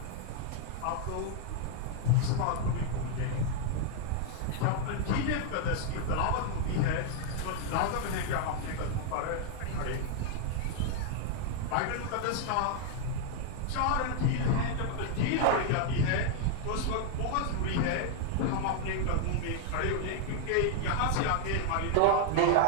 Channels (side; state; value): both; different; correlation 0.00